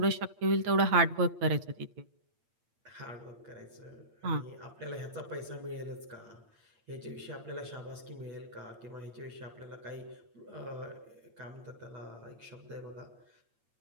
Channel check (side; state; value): left; late; 8.7 ms